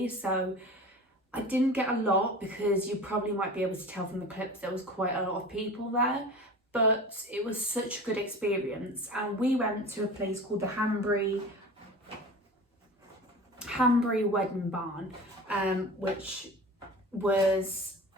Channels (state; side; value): normal; both; correlation 0.36